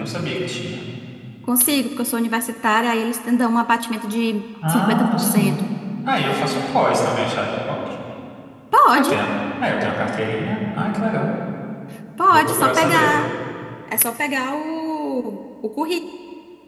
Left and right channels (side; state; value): both; identical; correlation 1.00